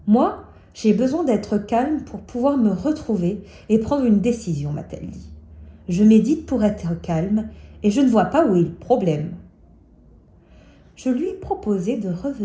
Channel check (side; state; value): both; identical; correlation 1.00